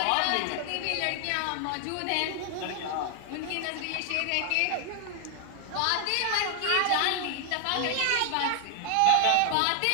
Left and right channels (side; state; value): both; different; correlation 0.00